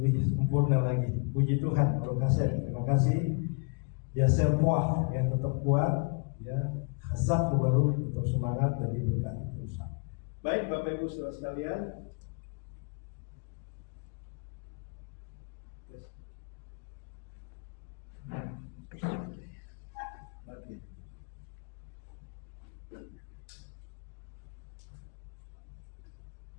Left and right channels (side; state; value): right; quieter; 35.5 dB